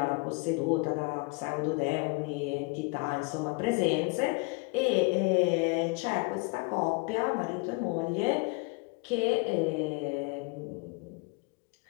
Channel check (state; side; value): quieter; right; 29.1 dB